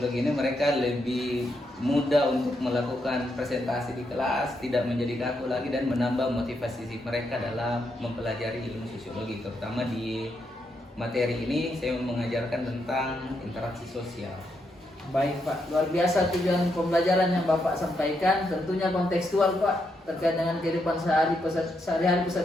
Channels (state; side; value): normal; both; correlation 0.80